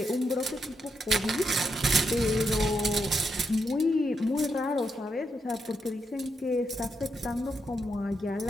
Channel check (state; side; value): normal; both; correlation 0.81